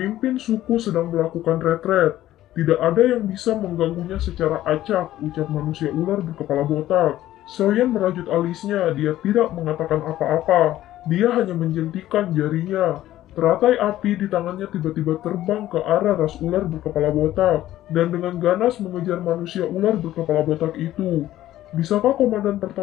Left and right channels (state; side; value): quieter; right; 13.9 dB